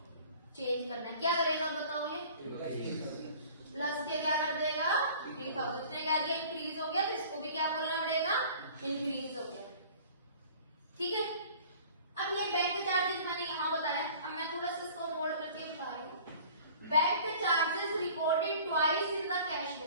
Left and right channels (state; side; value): inverted; both; correlation -0.47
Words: चेंज करना है, क्या करेगा बताओ, ये प्लस के क्या कर देगा, 3000 ने कह दिया इंक्रीज हो गया, तो इसको भी क्या बोलना पड़ेगा, इंक्रीज हो गया। ठीक है, अब ये बैंक चार्जेस मैंने यहाँ बताया, अब मैं थोड़ा सा इसको नोट करके बता रही हूँ। Bank charges recorded twice in the cash